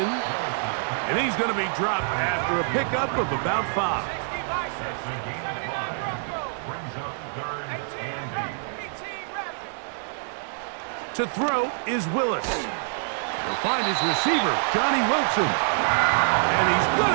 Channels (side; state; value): left; silent; digital silence